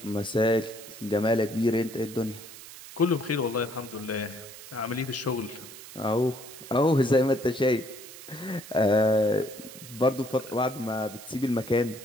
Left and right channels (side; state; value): right; noise; hiss, 15 dB below the sound